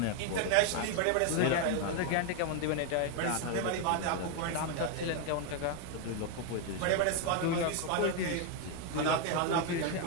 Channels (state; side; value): different; both; correlation 0.01